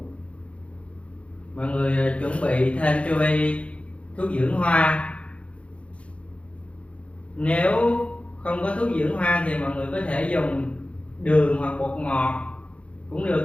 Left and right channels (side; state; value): right; late; 0.062 ms